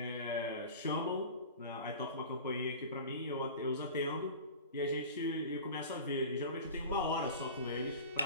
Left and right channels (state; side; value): inverted; both; correlation -0.36